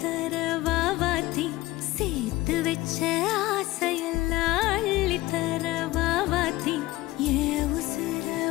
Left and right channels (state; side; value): quieter; right; 18.3 dB